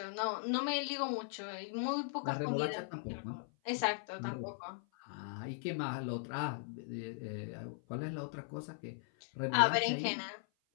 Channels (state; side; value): silent; right; 52 dB below the other